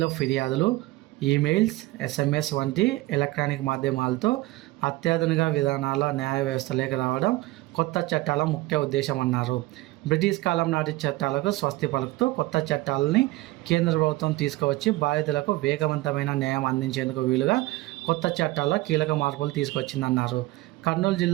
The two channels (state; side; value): quieter; left; 19.6 dB